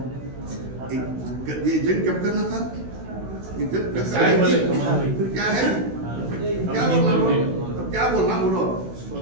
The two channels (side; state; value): left; late; 16 ms